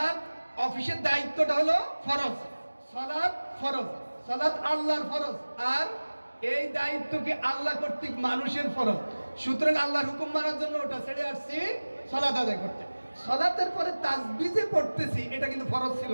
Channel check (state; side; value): inverted; both; correlation -1.00